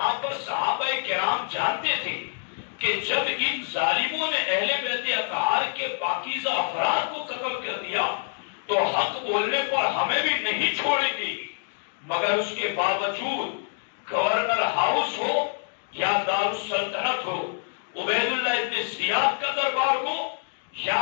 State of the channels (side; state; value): right; silent; digital silence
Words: پر صحابہ کرام جانتے تھے کہ جب ان ظالموں نے اہل بیت اطہار کے پاکیزہ افراد کو قتل کر دیا تو حق بولنے پر ہمیں بھی نہیں چھوڑیں گی، مگر اس کے باوجود گورنر ہاؤس ہو یا دارالسلطنت ہو، عبید اللہ ابن زیاد کا دربار ہو یا